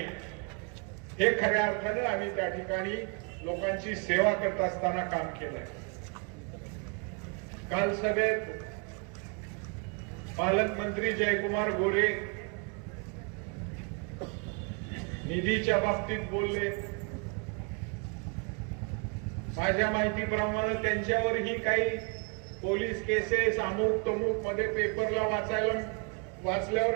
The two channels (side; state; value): left; quieter; 35.1 dB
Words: हे खऱ्या अर्थानं आम्ही त्या ठिकाणी लोकांची सेवा करत असताना काम केलंय. काल सभेत पालकमंत्री जयकुमार गोरे निधीच्या बाबतीत बोलले. माझ्या माहितीप्रमाणे त्यांच्यावरही काही पोलीस केसेस अमुक तमुक मध्ये पेपरला